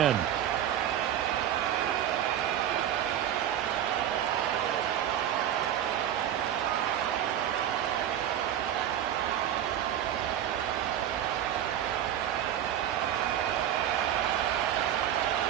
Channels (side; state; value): left; quieter; 10.7 dB